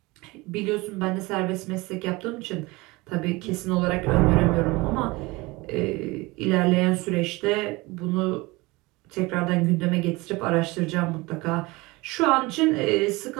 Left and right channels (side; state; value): left; quieter; 22.9 dB